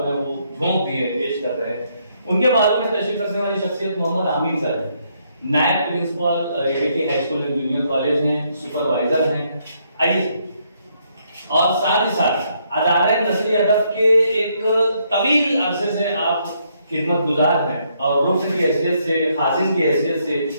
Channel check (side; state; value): both; inverted; correlation -0.73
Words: ہے وہ جھونک دیے پیش کر رہے ہیں۔ ان کے بارے میں تشریف رکھنے والی شخصیت محمد امین سر ہیں، نائب principal ATT high school and junior college ہیں، سپروائزر ہیں۔ آئیے، اور ساتھ ہی ساتھ ادارہ نثری ادب کے ایک طویل عرصے سے آپ خدمت گزار ہیں، اور رکن کی حیثیت سے، خازن کی حیثیت سے،